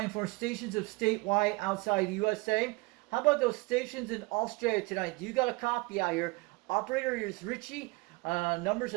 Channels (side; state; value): left; quieter; 25.1 dB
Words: for stations of statewide outside the USA. How about those stations in Australia tonight? Do you got a copy out here? Operator is Richie. Numbers